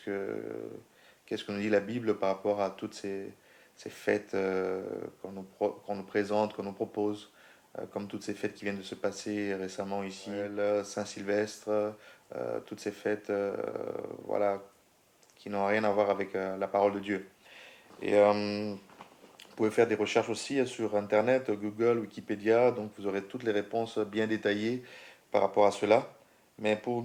nous dit la Bible par rapport à toutes ces fêtes qu'on nous présente, qu'on nous propose, comme toutes ces fêtes qui viennent de se passer récemment ici, le Saint-Sylvestre, toutes ces fêtes voilà, qui n'ont rien à voir avec la parole de Dieu. Et vous pouvez faire des recherches aussi sur Internet, Google, Wikipédia, donc vous aurez toutes les réponses bien détaillées par rapport à cela. Mais pour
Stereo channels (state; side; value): identical; both; correlation 1.00